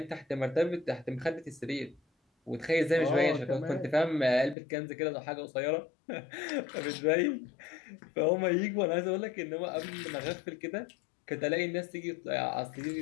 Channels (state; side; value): drops out; right; at 4.5 s